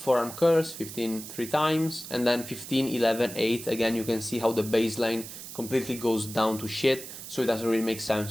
curls, 15 3 times, and then 15, 11, 8. Again, you can see how the baseline completely goes down to shit, so it doesn't really make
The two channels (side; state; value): right; noise; hiss, 12 dB below the sound